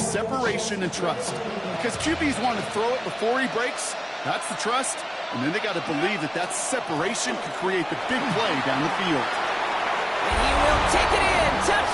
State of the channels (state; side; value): identical; both; correlation 1.00